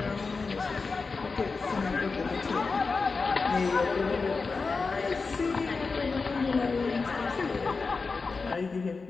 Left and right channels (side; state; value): right; quieter; 4.4 dB